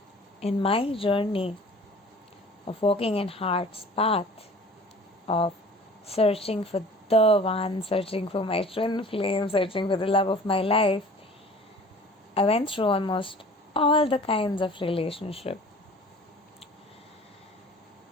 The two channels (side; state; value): both; normal; correlation 0.46